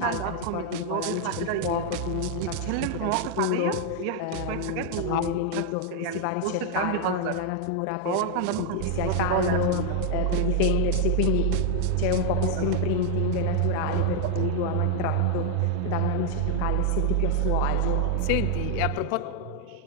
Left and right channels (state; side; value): different; both; correlation 0.00